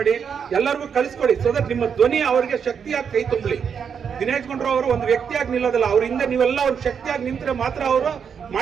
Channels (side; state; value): left; quieter; 7.0 dB